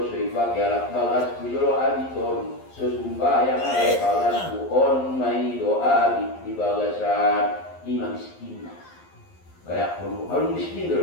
soy pakai alat balas di jolo abiton. Sesumbayang alat balasku on mai doa di balasan imam miskin. Kayak kalau miskin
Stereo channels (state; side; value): late; right; 11 ms